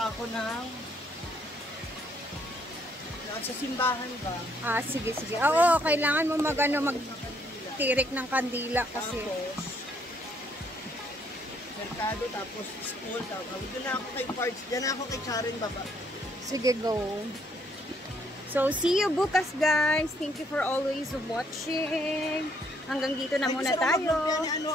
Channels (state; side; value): normal; both; correlation 0.69